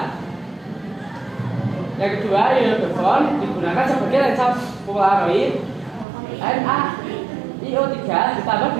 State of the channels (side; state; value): left; drops out; at 6.1 s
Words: Yang kedua, iodophon digunakan sebagai lensa polaroid NaIO3